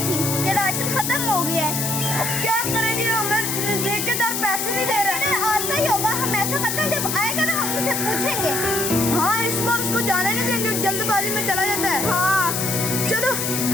थी कि राशन खत्म हो गया है। अब क्या करेंगे, हमें ठेकेदार पैसे नहीं दे रहे। आता ही होगा, हम ऐसा करते हैं, जब आएगा ना हम उसे पूछेंगे। हाँ, इस बार उसको जाने नहीं देंगे, जल्दबाजी में चला जाता है। हाँ चलो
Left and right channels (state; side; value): noise; left; hiss, 1 dB below the sound